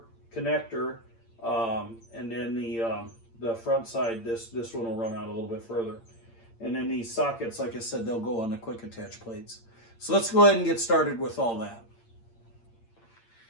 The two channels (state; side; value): late; right; 8.8 ms